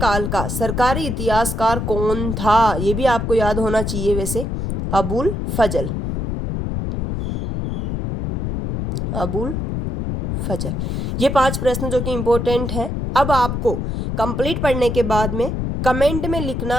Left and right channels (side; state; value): left; noise; rumble, 2 dB below the sound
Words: का सरकारी इतिहासकार कौन था? ये भी आपको याद होना चाहिए वैसे। अबुल फजल। अबुल फजल। ये 5 प्रश्न जो कि इंपॉर्टेंट हैं। अब आपको कंप्लीट पढ़ने के बाद में कमेंट में